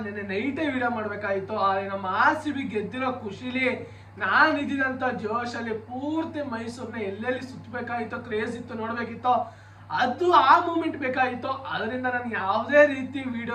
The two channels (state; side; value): identical; both; correlation 1.00